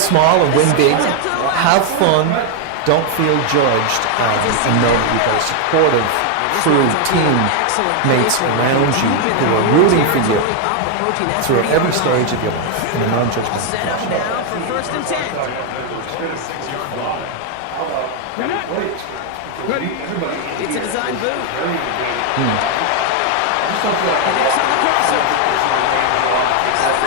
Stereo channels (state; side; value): different; both; correlation 0.00